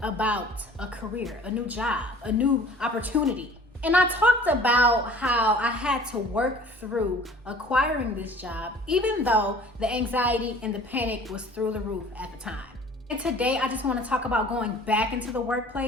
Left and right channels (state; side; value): normal; both; correlation 0.48